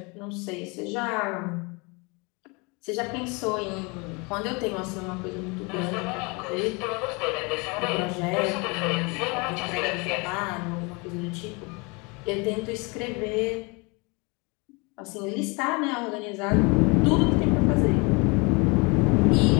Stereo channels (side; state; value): right; quieter; 28.9 dB